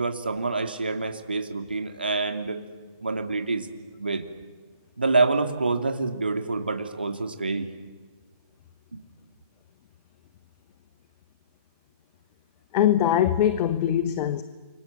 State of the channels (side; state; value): both; inverted; correlation -0.53